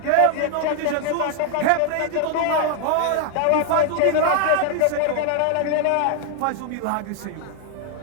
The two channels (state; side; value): different; both; correlation 0.00